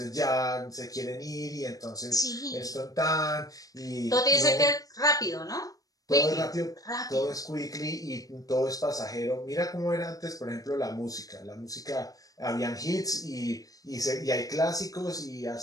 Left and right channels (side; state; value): right; late; 0.17 ms